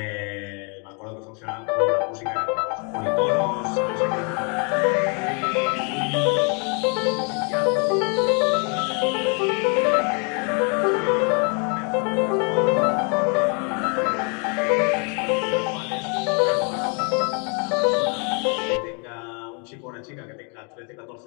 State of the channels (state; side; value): quieter; right; 36.4 dB